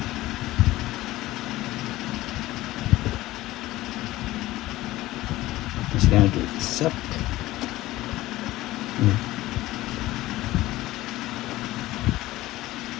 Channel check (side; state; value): right; quieter; 17.0 dB